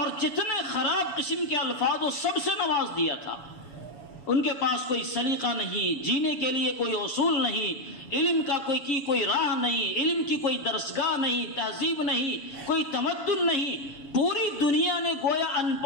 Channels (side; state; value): right; late; 7.0 ms